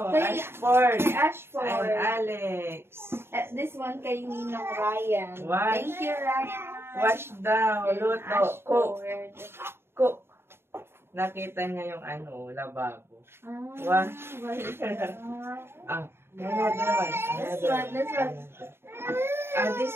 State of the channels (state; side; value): late; left; 0.11 ms